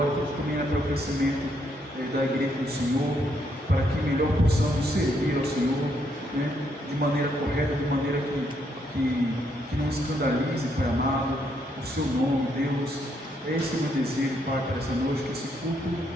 tudo também é para o crescimento da igreja do Senhor, para que melhor possamos servir ao Senhor, de maneira correta, de maneira que não escandalize, Pai amado, o Seu nome, Deus. Esse é o meu desejo, Pai, para essa noite, que esse culto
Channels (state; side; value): normal; both; correlation 0.74